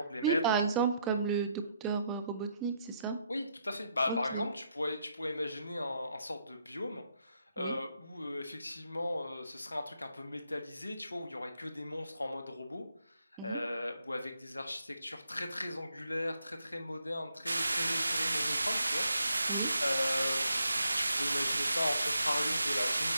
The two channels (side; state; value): both; inverted; correlation -0.77